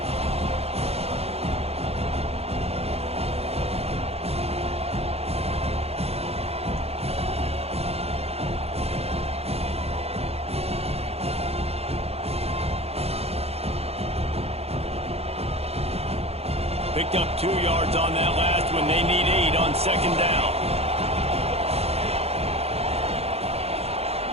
Picked up 2 yards on that last one. They need 8 on 2nd down.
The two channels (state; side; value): late; left; 0.29 ms